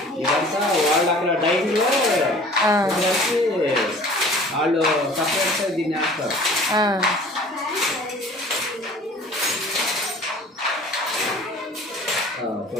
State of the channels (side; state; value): both; normal; correlation 0.47